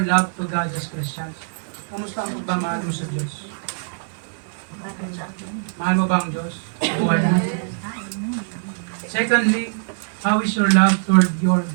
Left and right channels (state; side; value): silent; left; digital silence